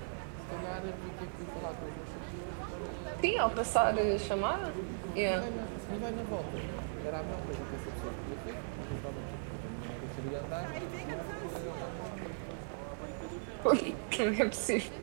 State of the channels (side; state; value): left; silent; 53 dB below the other